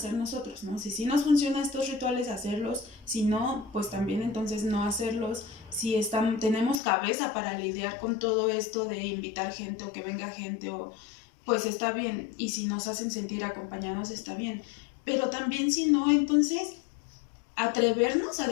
nosotros, ¿no? Si nos funcionan estos rituales, hacerlos, si no, pues también entonces no hacerlos. Si tenemos cabeza para lidiar con todo esto de invitar gente o que venga gente, pues está bien, y si nos hacen sentir acompañados está bien, pero también si no, entonces atrevernos a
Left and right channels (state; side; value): drops out; right; at 6.8 s